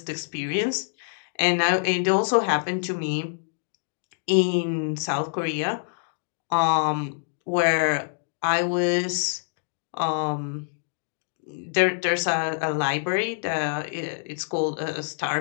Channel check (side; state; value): right; silent; digital silence